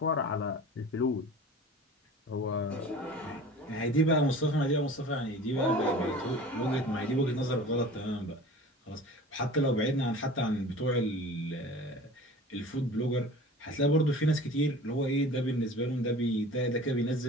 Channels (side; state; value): both; normal; correlation 0.40